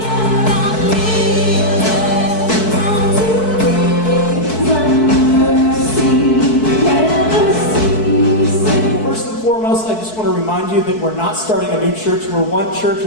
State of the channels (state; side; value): late; right; 4.6 ms